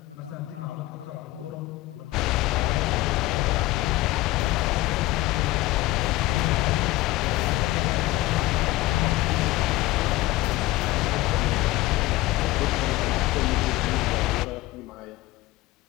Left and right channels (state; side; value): quieter; right; 18.1 dB